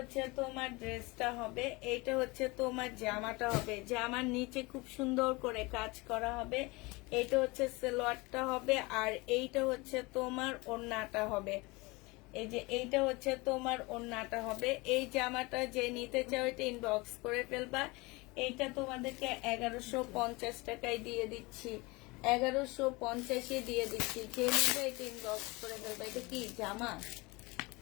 তোমার ড্রেসটা হবে, এটা হচ্ছে তোমার জামাটা হবে। জামার নিচে খুব সুন্দর করে কাজ করা হবে। এটা হচ্ছে সালোয়ারটা হবে, আর এইটা হচ্ছে তোমার ওড়নাটা হবে। এই যে এইটা হচ্ছে তোমার ওড়নাটা হবে। এই জামাটা যে নিতে চাও এটা ইনবক্স করে ফেলবা। এইটা তোমাদেরকে 1150 টাকায় দিয়ে দিচ্ছি, 1150-এ দিয়ে দিচ্ছি। যে নিবে এটা ইনবক্স করে ফেলবা। এটা কি জামা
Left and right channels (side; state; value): right; quieter; 24.6 dB